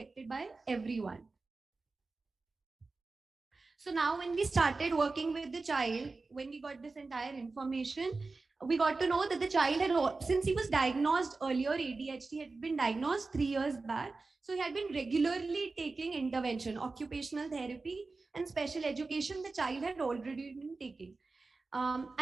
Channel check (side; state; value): left; quieter; 3.8 dB